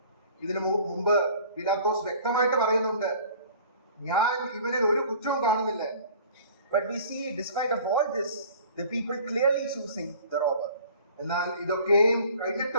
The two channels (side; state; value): both; inverted; correlation -0.48